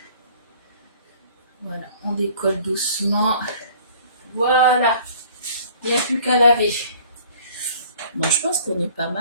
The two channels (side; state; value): both; inverted; correlation -0.52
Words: Voilà, on décolle doucement. Voilà. Il n'y a plus qu'à laver. Bon, je pense qu'on est pas